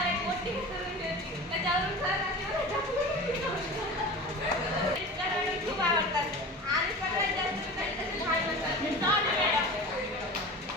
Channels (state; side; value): normal; both; correlation 0.34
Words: एक मोठी करून होती, त्याच्यावरून सर खूप आवडतात. आणि सगळ्यात जास्त लहान म्हणतात